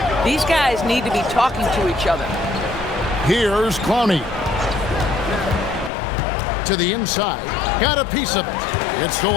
These guys need to be talking to each other. Here's Clowney. To the inside. Got a piece of it. It's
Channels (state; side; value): drops out; right; at 5.9 s